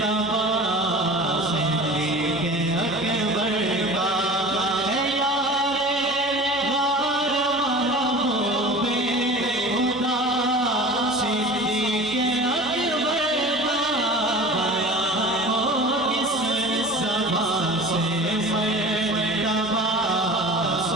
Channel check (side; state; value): both; normal; correlation 0.38